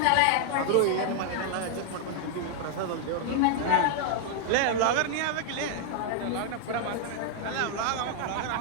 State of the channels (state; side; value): different; both; correlation 0.00